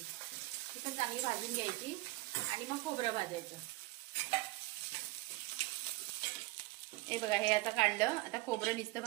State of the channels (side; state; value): left; quieter; 20.7 dB